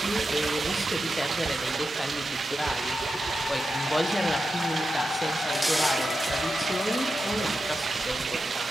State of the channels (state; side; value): normal; both; correlation 0.89